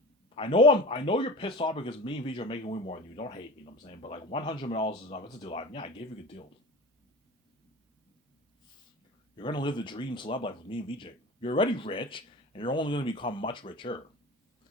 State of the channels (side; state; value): both; normal; correlation 0.34